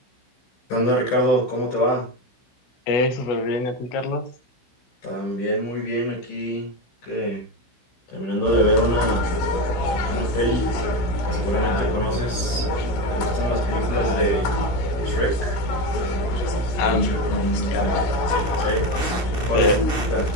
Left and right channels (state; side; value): late; right; 16 ms